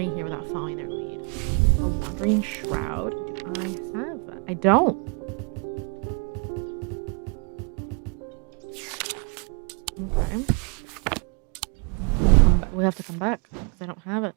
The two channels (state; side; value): quieter; left; 35.0 dB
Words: here without following their lead. A wandering shroud? Do I have that? I don't. Okay. We have to come back because I don't have it.